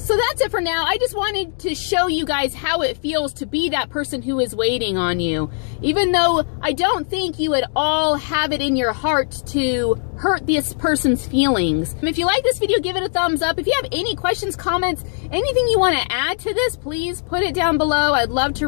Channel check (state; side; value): silent; right; 57 dB below the other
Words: that's it for now. I just wanted to show you guys how it feels to be that person who is waiting on you. Even though I don't think you at all have it in your heart to hurt this person's feelings. If you like this video, give it a thumbs up. If you have any questions, comments, anything you want to add to this, please put it down below. I'd love